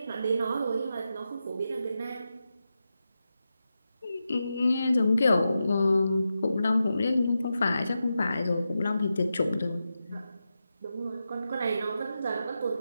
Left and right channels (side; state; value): both; inverted; correlation -0.89